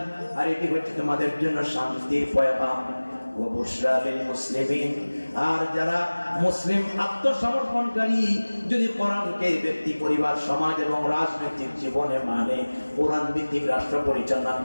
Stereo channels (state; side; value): inverted; both; correlation -1.00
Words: আর এটি হচ্ছে তোমাদের জন্য শান্তির পয়গাম। ওয়া বুশরা লিল মুসলিমিন, আর যারা মুসলিম আত্মসমর্পণকারী যদি কোরআনকে ব্যক্তি, পরিবার, সমাজ এবং রাজনৈতিক জীবনে মানে, কোরআন ভিত্তিক রাষ্ট্র পরিচালনা